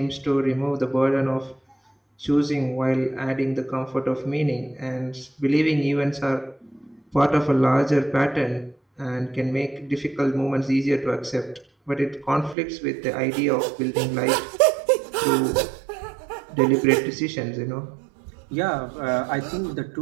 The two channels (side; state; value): left; drops out; at 12.6 s